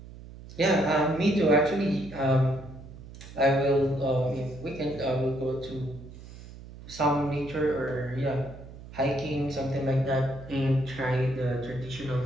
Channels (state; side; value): noise; right; hum, 16 dB below the sound